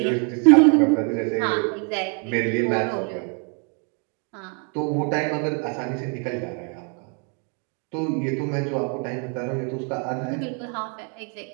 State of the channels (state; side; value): quieter; left; 38.9 dB